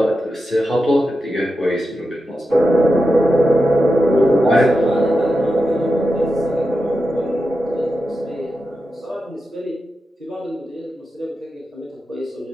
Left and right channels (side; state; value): both; normal; correlation 0.90